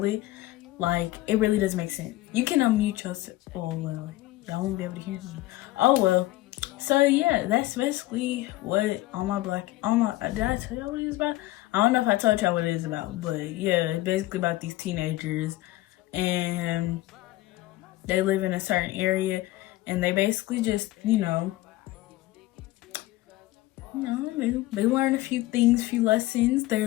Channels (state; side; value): quieter; right; 17.4 dB